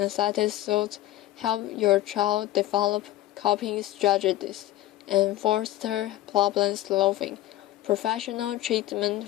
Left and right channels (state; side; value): quieter; right; 15.3 dB